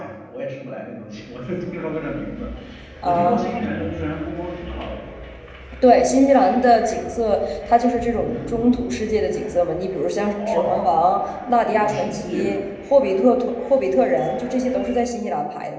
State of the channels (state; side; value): identical; both; correlation 1.00